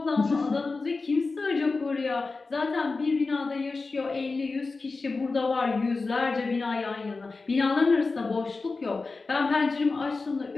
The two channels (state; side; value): quieter; right; 3.9 dB